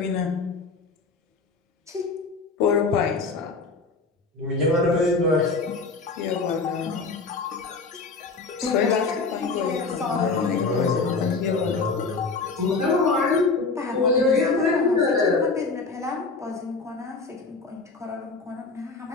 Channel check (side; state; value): right; quieter; 4.1 dB